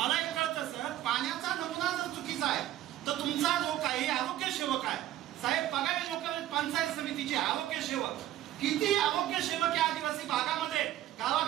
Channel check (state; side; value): quieter; left; 13.2 dB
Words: हे कळतं सर, पाण्याचा नमुना जर चुकीचा आहे तर तुमचा जो काही आरोग्य सेवक आहे साहेब, बघावे लोक पंचायत समितीचे आरोग्य सेवक किती आरोग्य सेवक या आदिवासी भागामध्ये